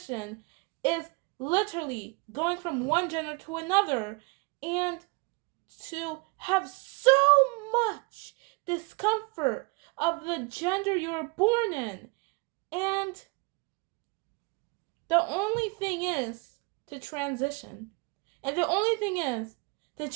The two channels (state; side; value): quieter; left; 29.9 dB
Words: is literally going from one gender to another, and to have so much discomfort of the gender you were born in. And the only thing is to transition. And the only thing is to